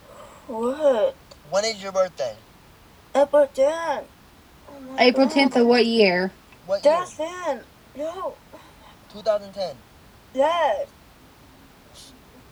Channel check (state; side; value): identical; both; correlation 1.00